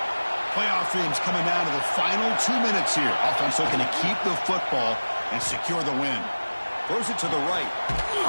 Playoff themes coming down to the final 2 minutes here. Offense looking to keep the football and secure the win. Throws it to the right.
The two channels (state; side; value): inverted; both; correlation -1.00